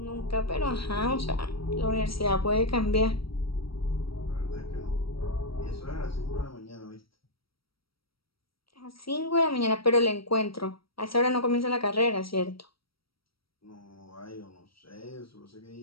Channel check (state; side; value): late; right; 0.75 ms